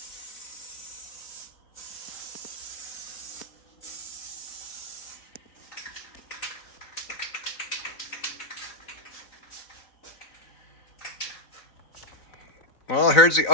Well, here's the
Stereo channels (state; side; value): late; right; 4.0 ms